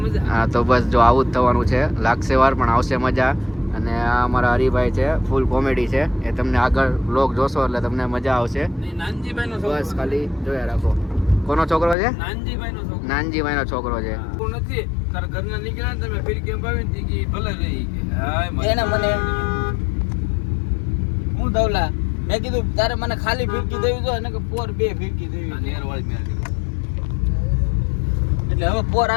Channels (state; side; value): drops out; right; at 12.0 s